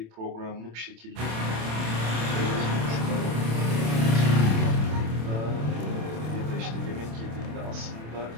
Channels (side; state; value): left; late; 27 ms